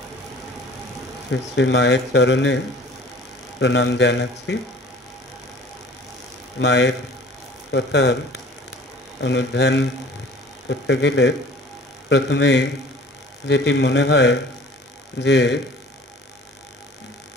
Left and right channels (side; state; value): both; normal; correlation 0.48